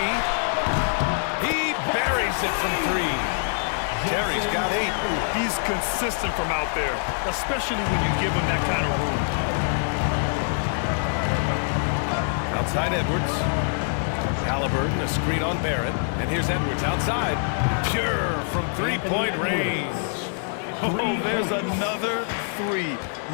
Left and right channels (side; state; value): right; silent; 62 dB below the other